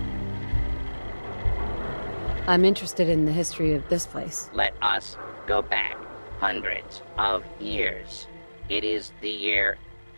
I'm interested in the history of this place. Let us go back hundreds of years. It is the year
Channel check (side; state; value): both; inverted; correlation -1.00